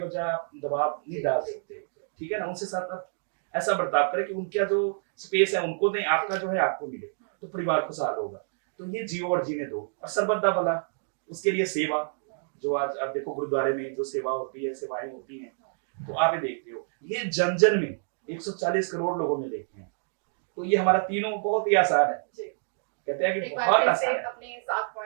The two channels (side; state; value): left; silent; digital silence